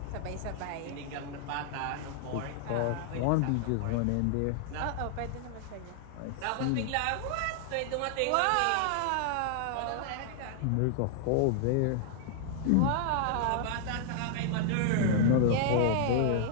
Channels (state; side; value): different; both; correlation 0.00